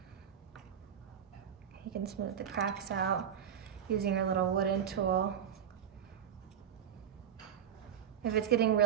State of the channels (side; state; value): left; quieter; 9.0 dB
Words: You can smooth the cracks out using your little wooden tool. If it's getting